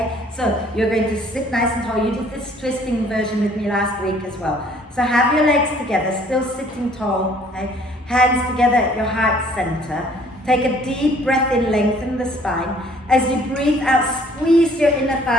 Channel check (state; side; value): normal; both; correlation 0.58